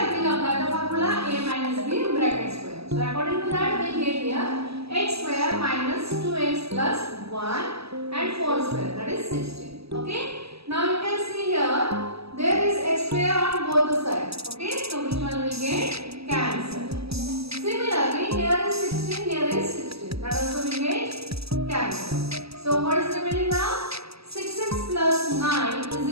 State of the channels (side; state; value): left; late; 0.78 ms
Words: we will apply the formula a minus b bracket square. So according to that, we get here x square minus 2x plus 1 and 4 square, that is 16. Okay. Now you can see here there is x square on both the sides. Okay. So which one will get cancelled. Similarly, here is 16, here is 16. That also will get cancelled. So what is remaining now? 6x plus 9